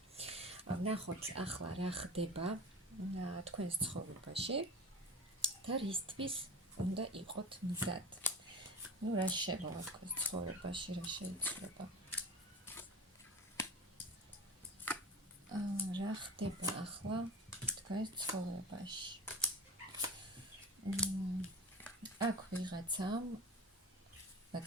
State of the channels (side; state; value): both; normal; correlation 0.34